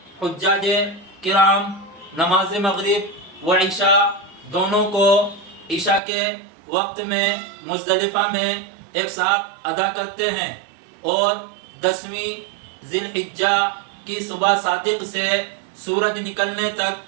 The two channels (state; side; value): drops out; left; at 6.0 s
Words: حجاج کرام نماز مغرب و عشاء دونوں کو عشاء کے وقت میں مزدلفہ میں ایک ساتھ ادا کرتے ہیں، اور 10ویں ذی الحجہ کی صبح صادق سے سورج نکلنے